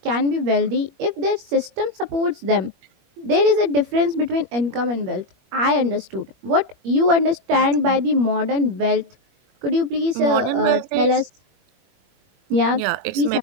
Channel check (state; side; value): late; left; 21 ms